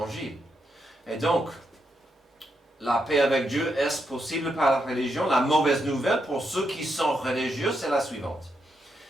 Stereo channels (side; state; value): both; normal; correlation 0.81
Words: Et donc, la paix avec Dieu, est-ce possible par la religion? La mauvaise nouvelle pour ceux qui sont religieux, c'est la suivante.